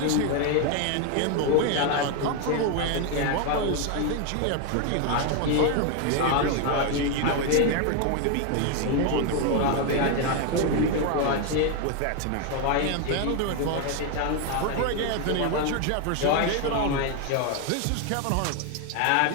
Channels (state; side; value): different; both; correlation 0.01